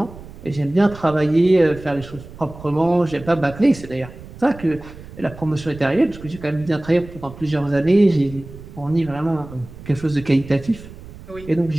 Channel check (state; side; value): noise; right; rumble, 16 dB below the sound